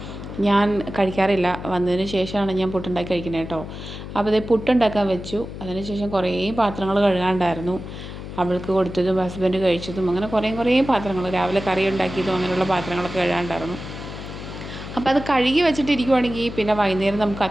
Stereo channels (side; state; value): left; noise; hum, 10 dB below the sound